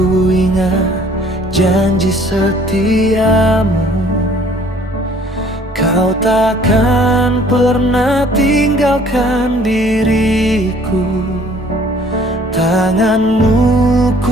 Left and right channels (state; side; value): normal; both; correlation 0.56